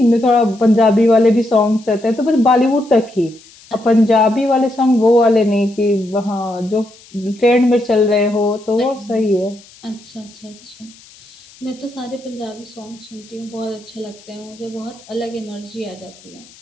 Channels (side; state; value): left; noise; hiss, 24 dB below the sound